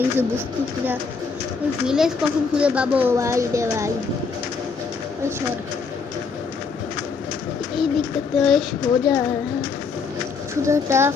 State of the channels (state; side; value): quieter; right; 5.0 dB